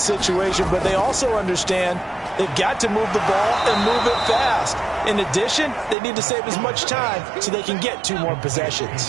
situation, but they also understand they've got to move the ball and move it fast. In addition, they need to save as much time so they can get 2 more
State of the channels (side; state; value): left; drops out; at 6.0 s